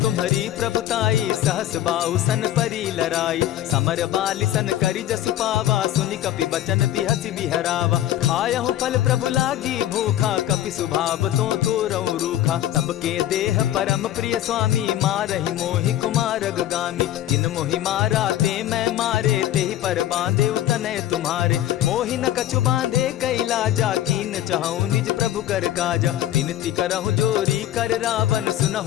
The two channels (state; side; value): quieter; right; 12.7 dB